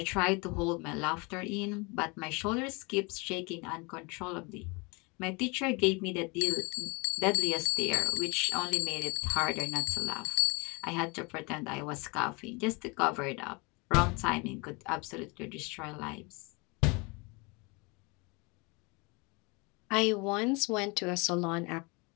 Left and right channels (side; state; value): right; quieter; 28.8 dB